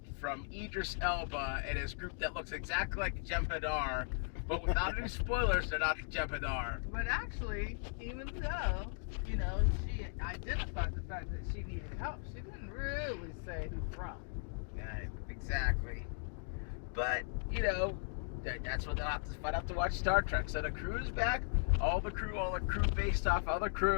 Idris Elba and his group that looks exactly like the Jem'Hadar, but without any spoilers, they're not the Jem'Hadar. But actually, even though, she identified the fact that she needed help, she didn't really say who from. Yeah, exactly. But, that's what they'll have to find out to watch Star Trek. So the crew is back. All the crew based off other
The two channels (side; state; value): right; silent; 53 dB below the other